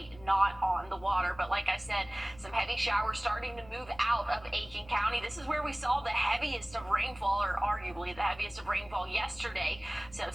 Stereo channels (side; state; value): left; noise; hum, 22 dB below the sound